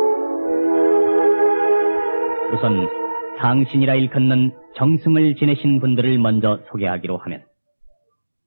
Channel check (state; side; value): inverted; both; correlation -1.00